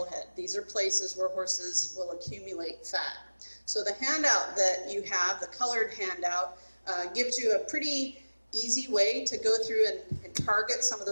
head. These are places where horses will accumulate fat. So the handout that you have, the colored handout, gives you a pretty easy way to go through and target some of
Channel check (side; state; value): both; inverted; correlation -1.00